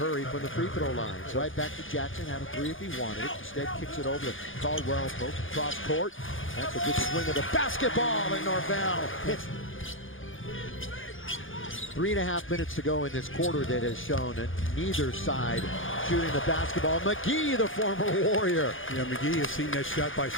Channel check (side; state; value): right; late; 0.58 ms